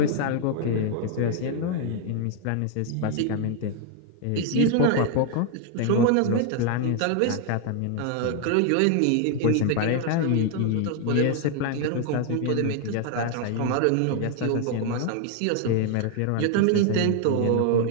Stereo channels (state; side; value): different; both; correlation 0.00